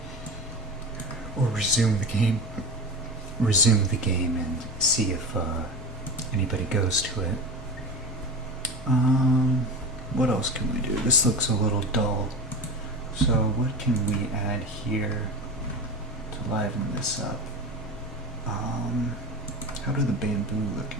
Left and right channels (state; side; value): normal; both; correlation 0.28